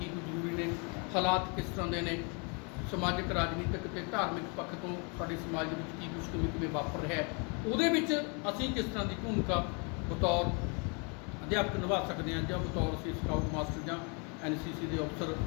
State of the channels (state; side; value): quieter; right; 34.7 dB